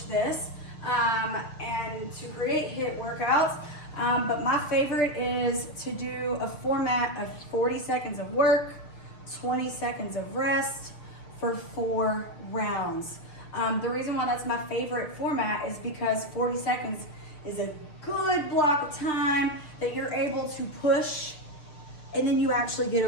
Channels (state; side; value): late; right; 6.6 ms